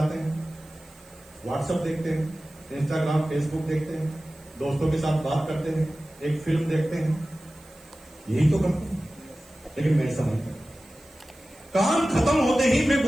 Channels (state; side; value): noise; right; hiss, 26 dB below the sound